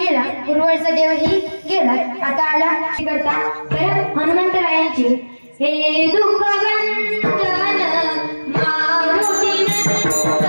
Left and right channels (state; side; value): inverted; both; correlation -1.00